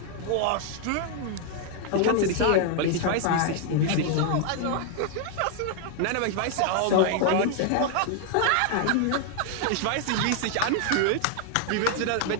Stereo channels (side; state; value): both; different; correlation 0.00